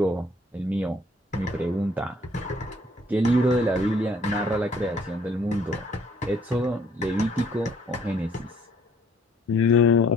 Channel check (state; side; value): normal; both; correlation 0.61